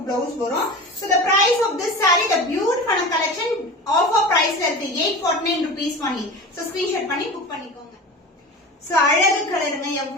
பிளவுஸ் வரும். So the price of this saree, the beautiful collection, offer price la irukku 849 rupees only. So screenshot பண்ணி book பண்ணிக்கோங்க. So அழகு கலருங்க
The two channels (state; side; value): normal; both; correlation 0.32